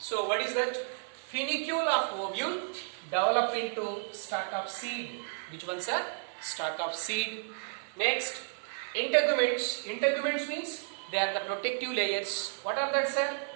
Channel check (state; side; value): silent; left; 56 dB below the other